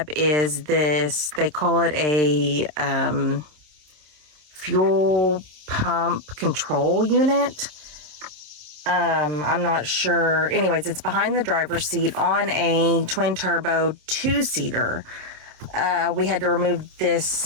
is this, they call it a fuel pump control unit. I'm not sure. Anyways, it's behind the driver's seat on a twin turbo 2-seater. We had to remove this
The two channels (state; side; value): late; left; 27 ms